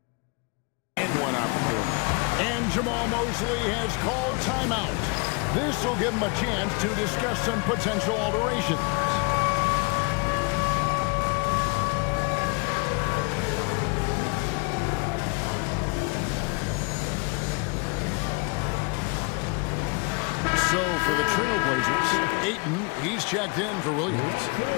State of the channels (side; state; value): right; quieter; 32.3 dB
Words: in one opportunity. And Jamal Mosley has called timeout. This will give him a chance to discuss some potential alterations. So for the Trailblazers, Ayton, he's checked in for Williams.